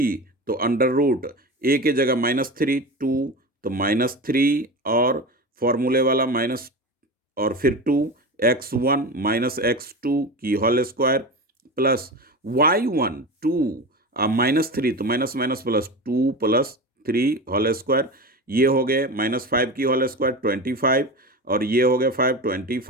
तो √A के जगह -3, 2 तो -3, और फॉर्मूले वाला माइनस, और फिर 2 x1 - x2 की होल स्क्वायर प्लस y1 2 -3, तो minus minus plus 2 + 3 whole square, ये हो गए -5 की होल स्क्वायर 25, और ये हो गया 5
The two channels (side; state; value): both; normal; correlation 0.26